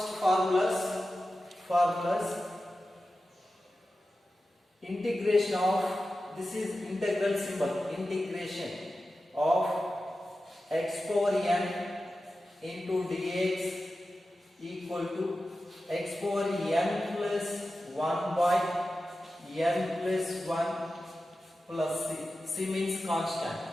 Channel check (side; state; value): both; normal; correlation 0.93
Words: formulas integration of, this is integral symbol, integration of x power n into dx equal to x power n plus 1 by n plus 1 plus c. C means constant.